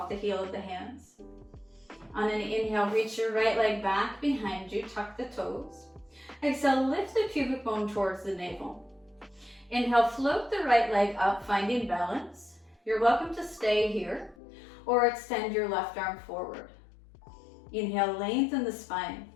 the heel of the hands. On an inhale, reach your right leg back behind you, tuck the toes. Exhale, lift the pubic bone towards the navel. Inhale, float the right leg up, finding balance. You're welcome to stay here or extend your left arm forward. Inhale, lengthen the spine.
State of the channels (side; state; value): right; drops out; at 14.4 s